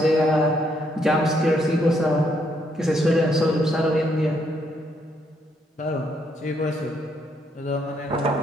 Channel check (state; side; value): normal; both; correlation 0.73